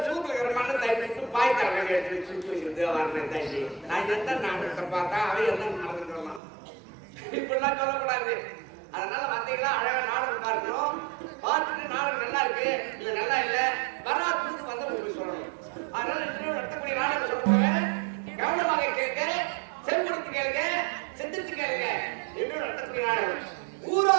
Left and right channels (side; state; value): left; drops out; at 6.4 s